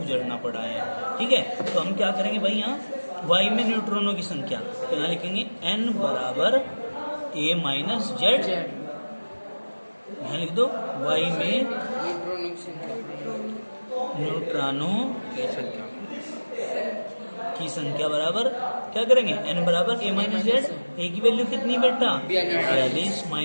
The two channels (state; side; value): inverted; both; correlation -1.00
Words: पड़ा है। ठीक है, तो हम क्या करेंगे भाई, यहाँ y में न्यूट्रॉनों की संख्या, तो यहाँ लिखेंगे n बराबर a माइनस जेड, यहाँ लिख दो y में न्यूट्रॉनों की संख्या बराबर क्या करेंगे, n बराबर a माइनस जेड, a की वैल्यू कितनी बेटा, 42,